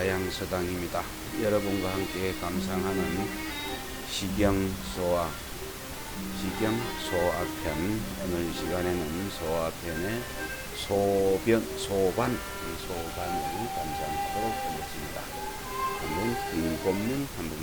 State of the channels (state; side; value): identical; both; correlation 1.00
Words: 여러분과 함께 감상하는 시경소아편, 오늘 이 시간에는 소아편의 소반을 감상하도록 하겠습니다. 한번 본문